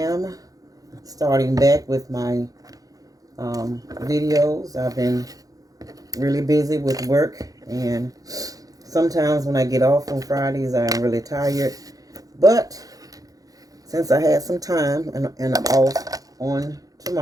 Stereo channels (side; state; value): left; late; 0.17 ms